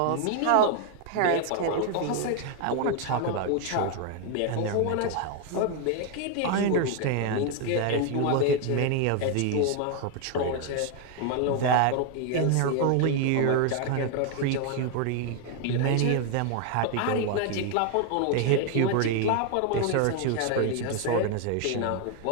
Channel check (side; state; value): both; different; correlation 0.01